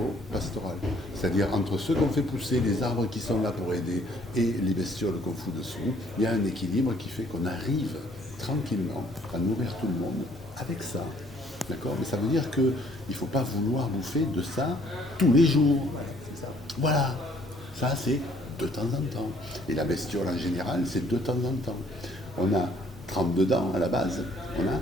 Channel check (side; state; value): both; normal; correlation 0.62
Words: C'est-à-dire entre ceux qu'on fait pousser, les arbres qui sont là pour aider et les bestioles qu'on fout dessous, il y a un équilibre qui fait qu'on arrive tranquillement à nourrir tout le monde avec ça. D'accord? Mais ça veut dire qu'il ne faut pas vouloir bouffer de ça tous les jours. Voilà. Ça, c'est de temps en temps. Et la bestiole en général, c'est de temps en temps. On a 32 dents à la base. On a